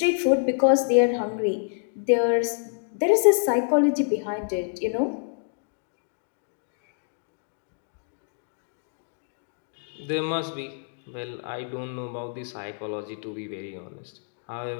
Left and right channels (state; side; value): silent; right; digital silence